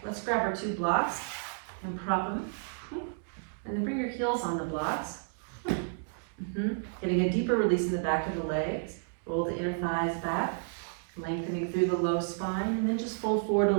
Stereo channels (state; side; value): silent; left; digital silence